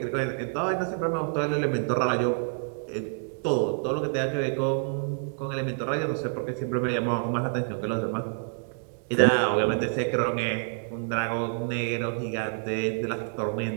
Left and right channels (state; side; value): silent; left; digital silence